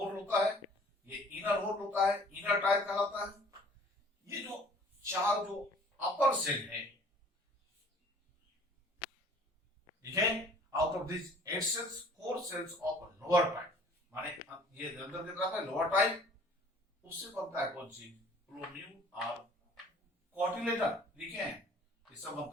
होता है, ये इनर होल होता है, इनर टायर कहलाता है। ये जो 4 जो अपर सेल है, ठीक है, out of this 8 cells 4 cells of lower type, माने ये अंदर की तरफ है लोअर टाइप, उससे बनता है कौन सी प्लोम्यूल और कॉटिलेडन। लिखे हैं इससे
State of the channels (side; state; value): both; normal; correlation 0.52